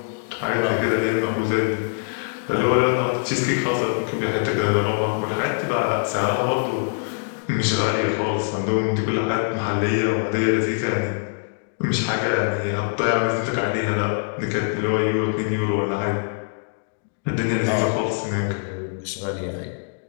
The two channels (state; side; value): silent; right; digital silence